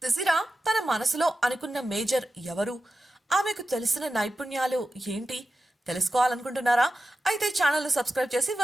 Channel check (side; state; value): both; normal; correlation 0.92